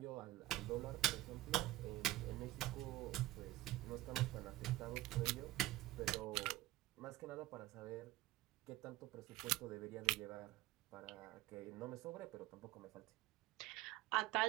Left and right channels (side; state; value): left; quieter; 16.6 dB